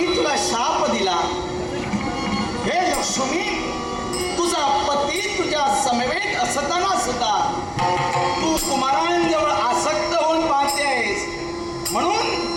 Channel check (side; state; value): both; identical; correlation 1.00